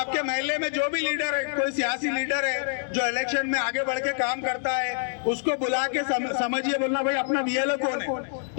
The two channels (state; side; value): silent; right; 61 dB below the other